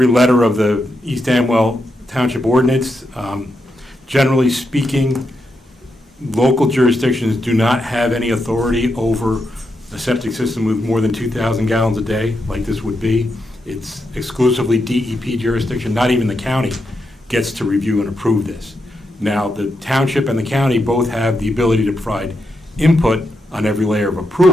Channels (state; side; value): normal; both; correlation 0.84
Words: letter of the East Amwell Township ordinance, generally speaking, local jurisdictions do not have any authority over a septic system with more than 2,000 gallons a day, like this would be. It's exclusively DEP jurisdiction. Not even the county gets to review and approve this. Now, the township and the county both have the ability to provide input on every layer of